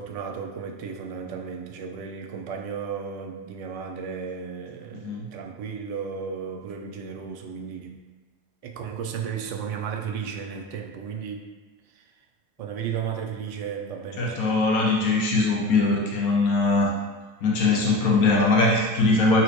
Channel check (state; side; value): late; right; 4.2 ms